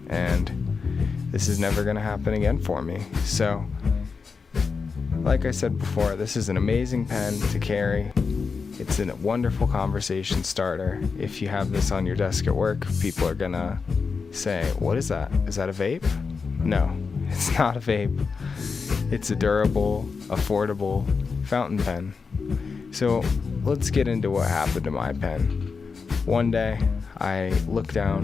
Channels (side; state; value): right; quieter; 5.1 dB